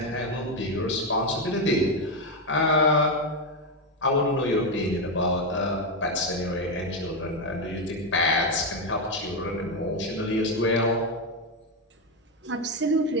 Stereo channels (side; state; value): both; normal; correlation 0.08